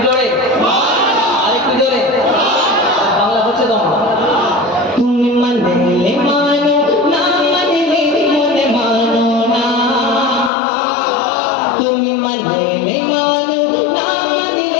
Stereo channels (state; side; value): drops out; right; at 10.5 s